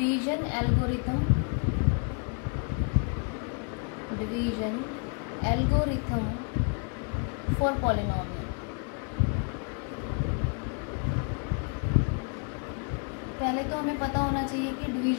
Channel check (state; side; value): quieter; right; 39.0 dB